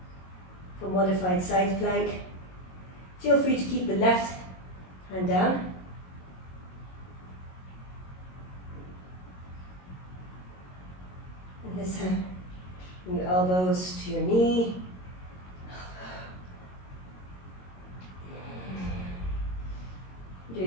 For modified side plank. Feel free to keep the left hand down. And this time, bring your elbows to your knee.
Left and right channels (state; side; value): late; right; 22 ms